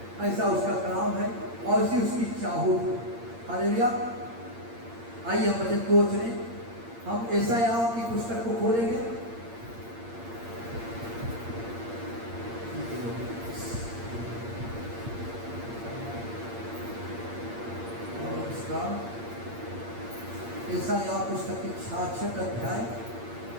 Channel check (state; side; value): late; left; 8.7 ms